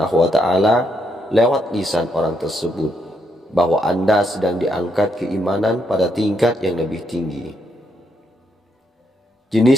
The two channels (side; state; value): both; normal; correlation 0.77